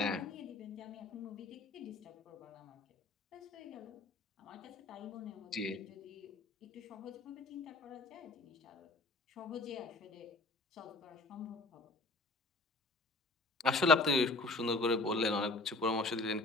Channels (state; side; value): quieter; right; 3.2 dB